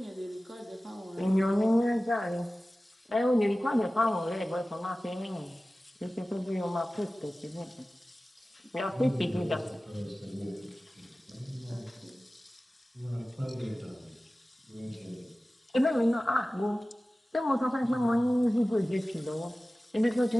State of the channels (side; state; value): both; normal; correlation 0.96